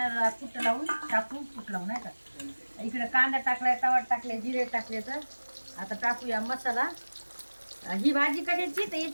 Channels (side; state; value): both; inverted; correlation -1.00